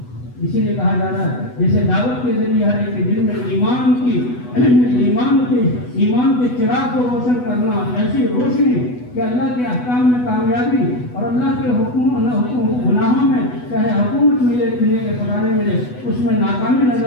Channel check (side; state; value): right; late; 8.1 ms